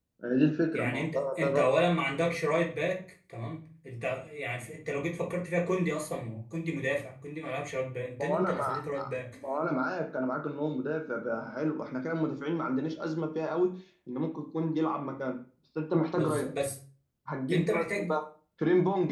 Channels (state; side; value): identical; both; correlation 1.00